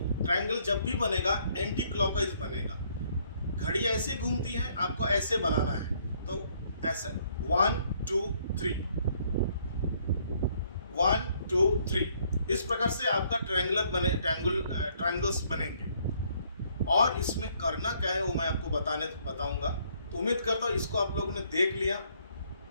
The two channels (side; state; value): both; inverted; correlation -0.66